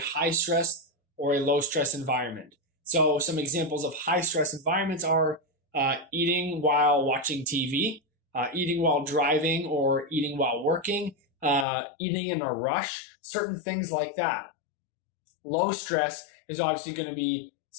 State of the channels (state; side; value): drops out; right; at 11.7 s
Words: stress or a low stress environment. So some examples of high stress environments are eating while watching TV, eating while driving or eating while working, eating in a rush, certain things like that. Low stress is obviously going to be